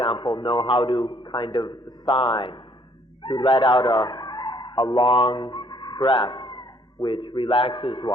know how to kind of sigh, to let out a long breath, which relaxes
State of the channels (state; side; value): normal; both; correlation 0.64